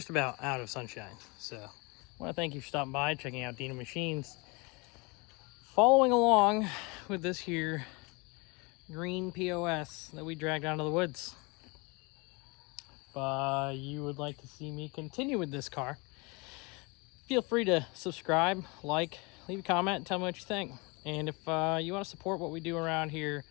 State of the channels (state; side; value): quieter; right; 28.2 dB